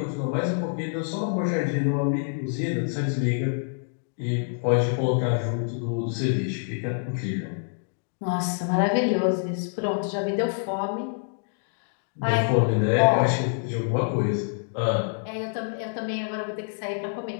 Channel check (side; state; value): right; silent; digital silence